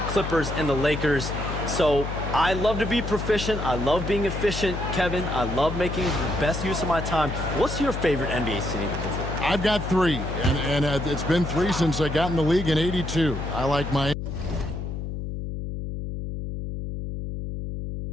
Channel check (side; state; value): left; noise; hum, 5 dB below the sound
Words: Clippers and the Lakers. So I love to be proficient. I love being efficient, Kevin. I love making the best use of my time. What's your favorite NBA city to visit? I've got 3, and it's been 3 since I got in the league in '82. I like Miami.